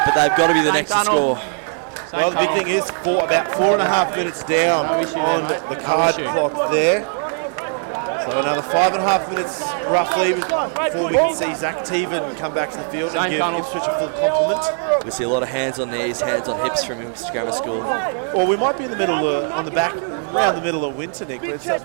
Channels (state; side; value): silent; left; 60 dB below the other